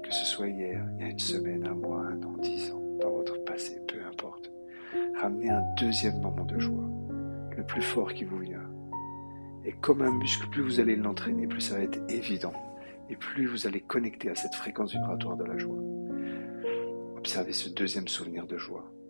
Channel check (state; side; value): inverted; both; correlation -1.00